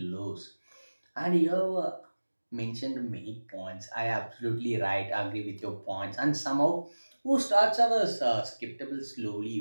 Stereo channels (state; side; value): inverted; both; correlation -1.00